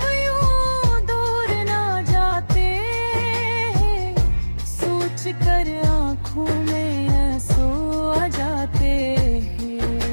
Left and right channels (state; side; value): inverted; both; correlation -1.00